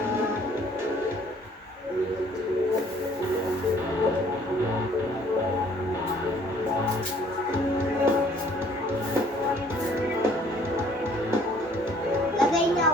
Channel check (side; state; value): both; normal; correlation 0.58